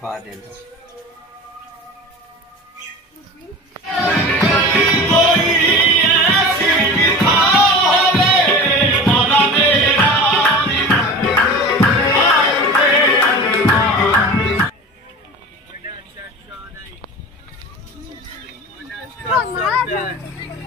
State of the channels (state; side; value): normal; both; correlation 0.34